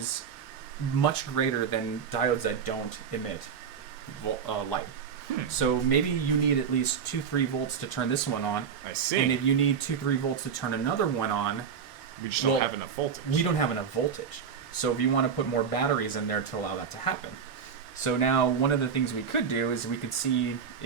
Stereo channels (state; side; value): quieter; left; 6.9 dB